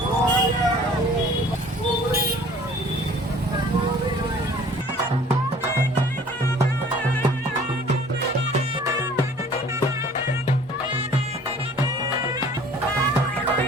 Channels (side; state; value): both; normal; correlation 0.51